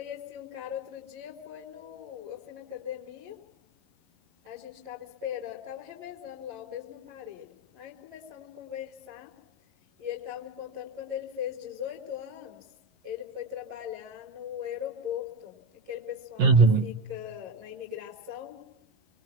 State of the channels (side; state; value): left; late; 11 ms